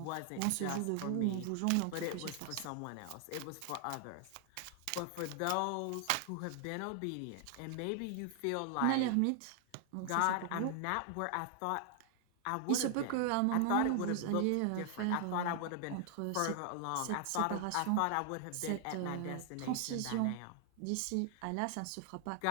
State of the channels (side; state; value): both; different; correlation 0.00